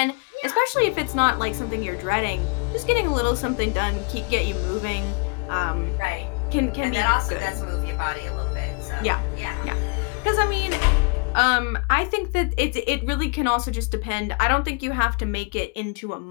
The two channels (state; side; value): quieter; right; 33.3 dB